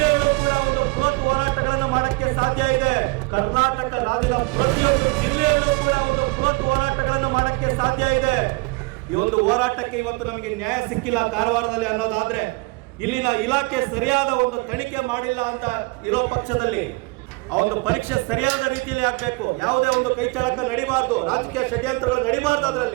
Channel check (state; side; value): quieter; left; 26.4 dB